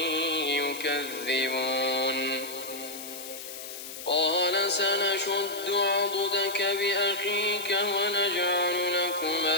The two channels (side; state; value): left; noise; hiss, 11 dB below the sound